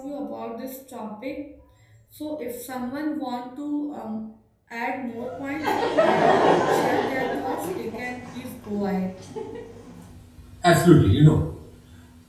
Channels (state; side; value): identical; both; correlation 1.00